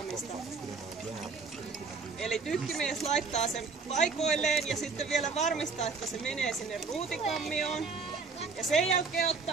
Eli tykkimies laittaa sen paikoilleen ja sitten vielä varmistaa, että se menee sinne ruutikammioon. Ja sen jälkeen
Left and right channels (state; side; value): quieter; left; 4.7 dB